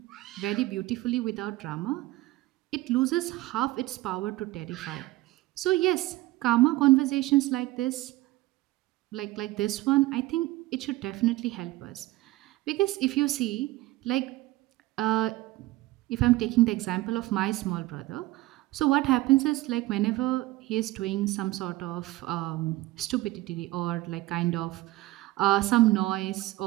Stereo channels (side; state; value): left; quieter; 18.1 dB